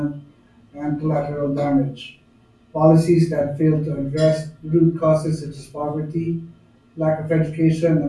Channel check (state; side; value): identical; both; correlation 1.00